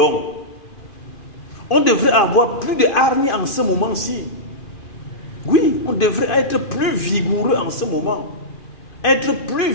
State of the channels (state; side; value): late; right; 2.6 ms